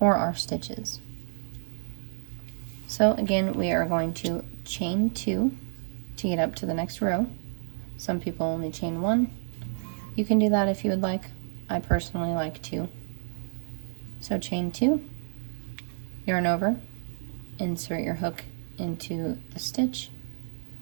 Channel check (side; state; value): left; silent; digital silence